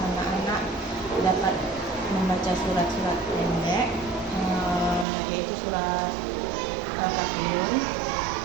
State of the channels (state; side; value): drops out; left; at 5.1 s